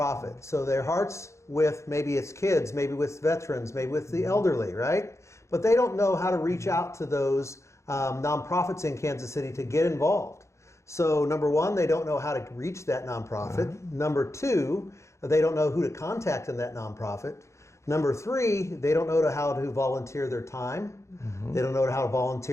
So their heart's with maybe it's kids, maybe with veterans, maybe with the elderly, right? But they don't know how to reach out to those nonprofits in Kansas City to get involved. So number one, they don't know how to reach that nonprofit. Number two, they don't know who to contact in that nonprofit. Number three, they don't know how to volunteer their time. They don't know how to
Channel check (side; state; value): right; late; 0.14 ms